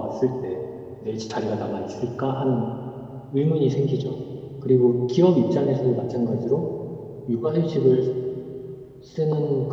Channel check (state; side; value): identical; both; correlation 1.00